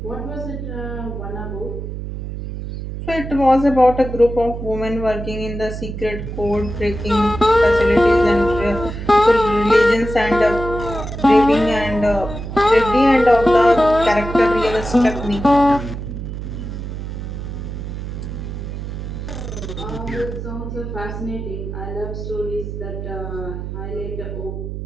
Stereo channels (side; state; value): right; noise; hum, 7 dB below the sound